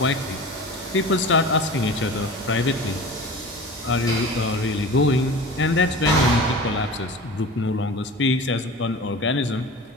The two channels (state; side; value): normal; both; correlation 0.36